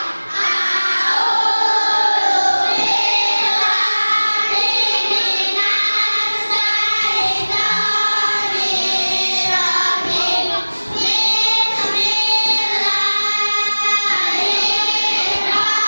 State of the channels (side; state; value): both; inverted; correlation -1.00